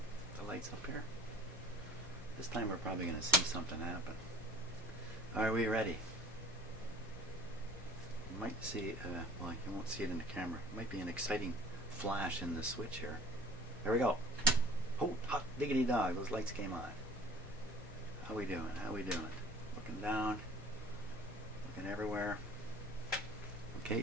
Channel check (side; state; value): both; normal; correlation 0.47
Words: the lights up here. This time we're probably going to see something happen. Are we ready? You might see, well, you won't see it in the camera. It might be an exciting flash in the switch here. There we go. Oh, hot diggity dog, those lights came on. How we doing? How we doing? Looking down, looking everywhere.